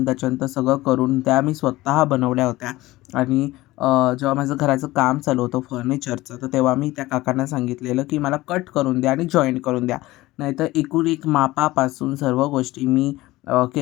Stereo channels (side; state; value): right; quieter; 18.3 dB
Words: त्याच्यानंतर सगळं करून त्या मी स्वतः बनवल्या होत्या. आणि जेव्हा माझं घराचं काम चालू होतं फर्निचरचं, तर तेव्हा मी त्या काकांना सांगितलेलं, की मला कट करून द्या आणि जॉईंट करून द्या. नाहीतर एकूण एक मापापासून सर्व गोष्टी मी